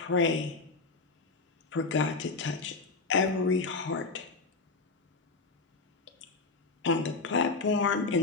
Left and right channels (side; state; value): right; quieter; 4.0 dB